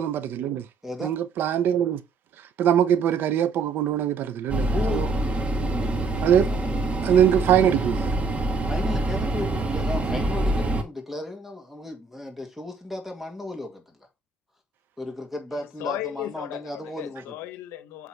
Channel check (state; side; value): quieter; left; 4.9 dB